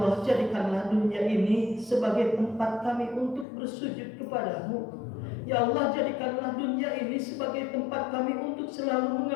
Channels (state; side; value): drops out; right; at 3.5 s